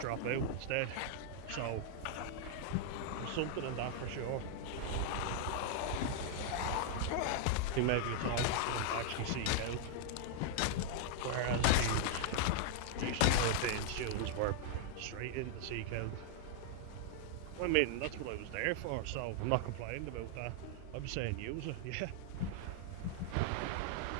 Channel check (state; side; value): different; both; correlation 0.00